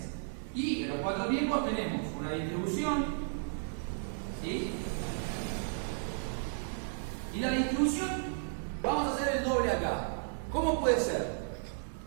Y en los 4 tiempos tenemos una distribución, ¿sí? Y la distribución, vamos a hacer el doble acá. ¿Cómo puede ser?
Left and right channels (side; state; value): left; silent; digital silence